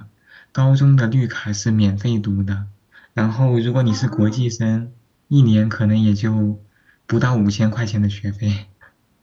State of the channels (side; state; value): both; identical; correlation 1.00